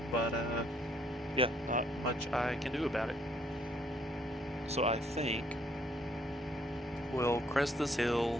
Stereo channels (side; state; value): both; normal; correlation 0.66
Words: But, yeah, not much I can do about it. So I think we'll crest this